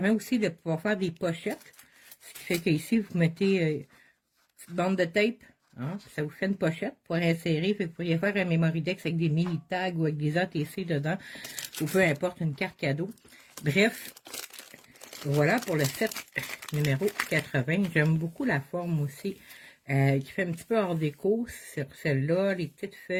aussi de pouvoir faire des pochettes. Ce qui fait qu'ici, vous mettez une petite bande de tape. Hein, ça vous fait une pochette pour insérer. Vous pourriez faire un Memory-Dex avec des mini tags ou avec des ATC dedans. Ou peu importe, une carte cadeau. Bref. Voilà pour le set numéro 80. J'aime beaucoup la forme aussi, qui fait un petit peu hors déco sur celle-là, les petites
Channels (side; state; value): both; identical; correlation 1.00